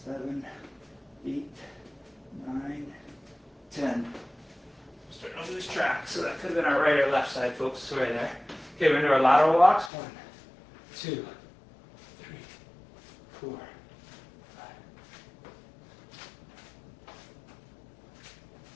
7, 8, 9, 10. Starting to lose track, so that could have been our right or left side, folks. Sorry there. Okay, we're into our lateral walks. 1, 2, 3, 4, 5,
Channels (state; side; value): drops out; right; at 9.9 s